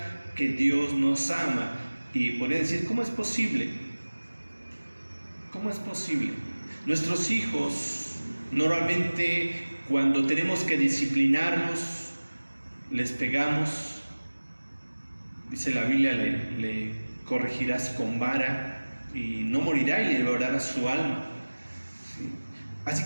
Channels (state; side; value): inverted; both; correlation -1.00